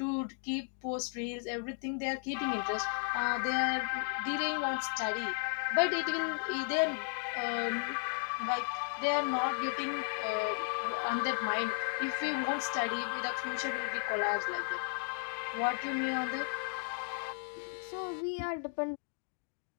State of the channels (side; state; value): right; silent; 55 dB below the other